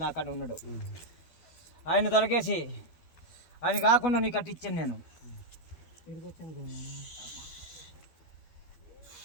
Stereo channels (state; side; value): late; right; 12 ms